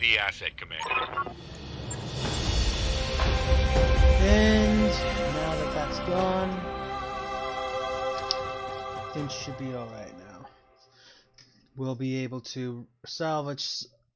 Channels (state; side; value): identical; both; correlation 1.00